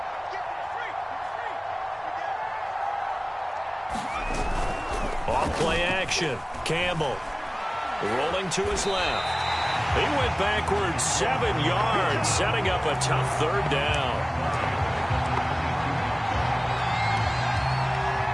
Off-play action. Campbell rolling to his left. He went backwards 7 yards, setting up a tough 3rd down.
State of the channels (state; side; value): identical; both; correlation 1.00